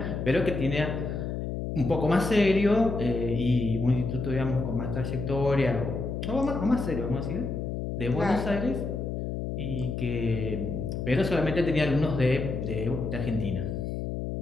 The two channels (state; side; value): noise; left; hum, 3 dB below the sound